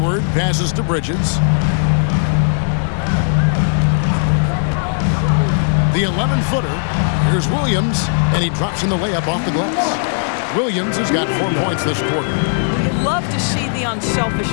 passes to Bridges. The 11-footer. Here's Williams, and he drops in the layup off the glass. Williams has got 4 points this quarter. You love to see the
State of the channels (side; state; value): right; silent; digital silence